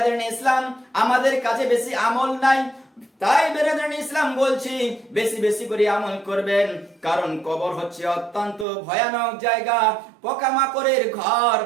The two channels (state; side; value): drops out; left; at 8.7 s